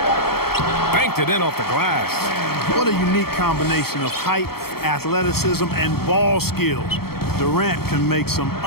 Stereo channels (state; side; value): late; right; 0.95 ms